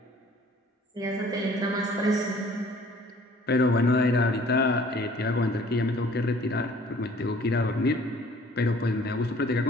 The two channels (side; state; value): both; normal; correlation 0.54